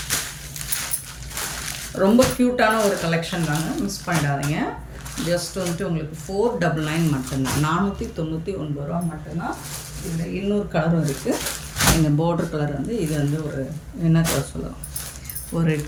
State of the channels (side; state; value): both; identical; correlation 1.00